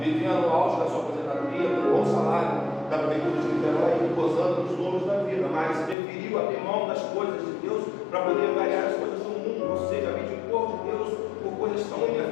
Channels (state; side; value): drops out; right; at 6.0 s